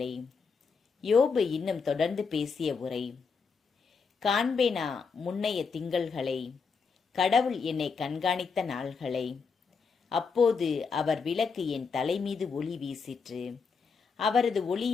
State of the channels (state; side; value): quieter; right; 5.3 dB